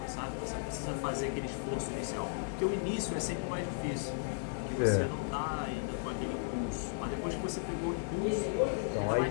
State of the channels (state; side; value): silent; right; digital silence